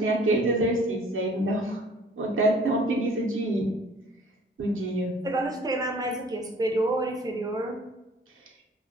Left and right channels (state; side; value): normal; both; correlation 0.53